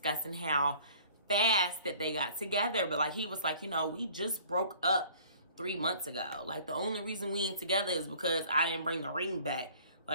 how fast that they got together. But like, he was like, you know, we just broke up 3 months ago. Like, the only reason we ain't together is because I didn't bring the ring back.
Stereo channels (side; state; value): both; inverted; correlation -0.52